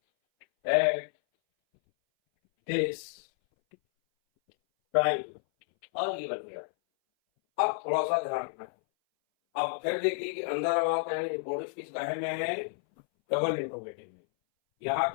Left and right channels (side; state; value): right; silent; 58 dB below the other